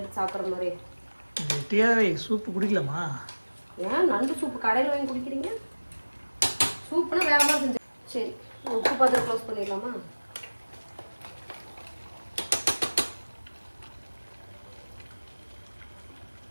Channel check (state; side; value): inverted; both; correlation -1.00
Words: எடுத்து சாப்பிட்ற மாதிரி? கெட்டியாகவே சூப்பு குடிக்கலாமா? ஏன் நண்டு சூப்பு கடையில் வாங்கி குடிக்கிறீங்க? சூப்புனா வேற மாதிரி செஞ்சு. சரி, உப்பு பார்த்து க்ளோஸ் பண்ணிடலாமா?